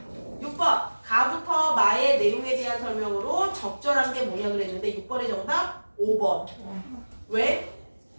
6번. 가부터 마의 내용에 대한 설명으로 적절한 게 뭐냐 그랬는데 6번의 정답 5번. 왜?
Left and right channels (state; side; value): inverted; both; correlation -1.00